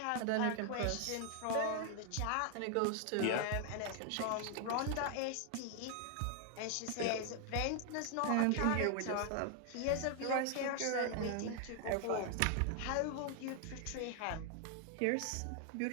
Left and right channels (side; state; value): both; different; correlation 0.00